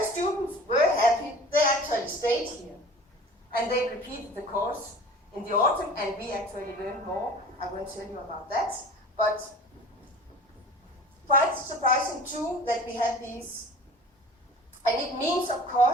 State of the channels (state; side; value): normal; both; correlation 0.42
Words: students were happy, they actually stayed here. And they repeated the course in the autumn, and we actually learned more. I won't tell you about that, but quite surprising too that we had these. And it means, of